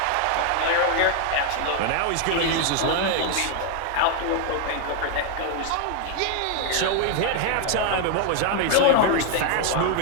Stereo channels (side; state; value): both; different; correlation 0.00